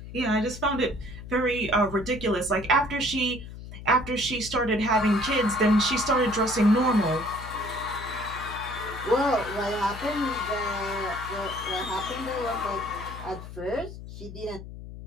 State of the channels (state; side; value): noise; left; hum, 12 dB below the sound